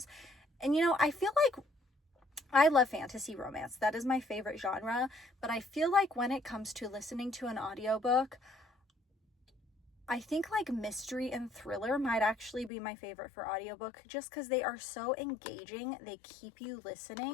And, you know, I feel like I love fantasy romance. That is my favorite genre. But I feel like when it comes to listening to an audiobook, I think like mystery and thriller might actually be my favorite for audiobook, just because they are so engaging. They keep you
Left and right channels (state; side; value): drops out; right; at 12.7 s